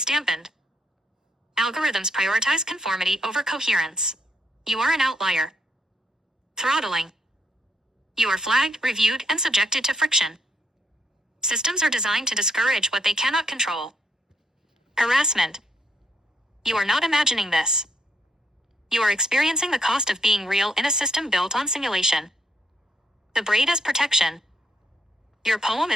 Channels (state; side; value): normal; both; correlation 0.74